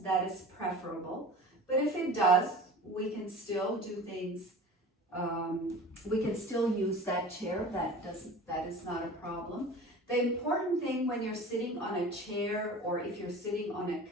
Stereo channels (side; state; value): both; normal; correlation 0.39